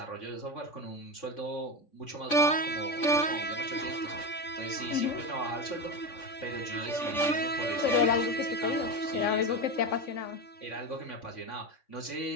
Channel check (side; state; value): right; late; 3.5 ms